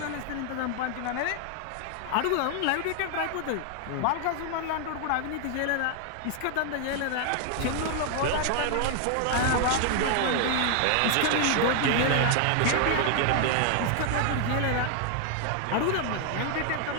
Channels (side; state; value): both; different; correlation 0.00